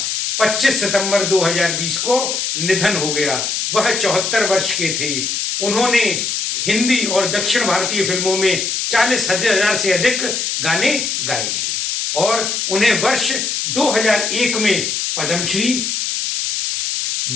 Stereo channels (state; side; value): noise; left; hiss, 1 dB below the sound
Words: 25 सितंबर 2020 को निधन हो गया। वह 74 वर्ष के थे। उन्होंने हिंदी और दक्षिण भारतीय फिल्मों में 40,000 से अधिक गाने गाए हैं और उन्हें वर्ष 2001 में